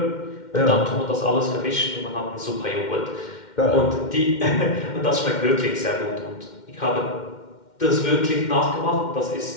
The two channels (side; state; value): right; late; 2.1 ms